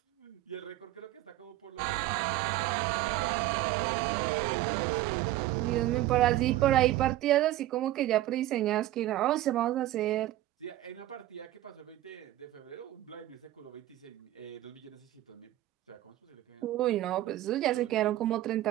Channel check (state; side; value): quieter; left; 15.0 dB